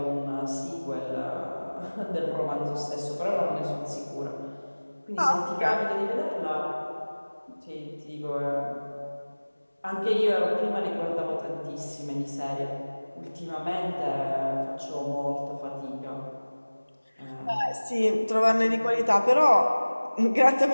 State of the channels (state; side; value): inverted; both; correlation -1.00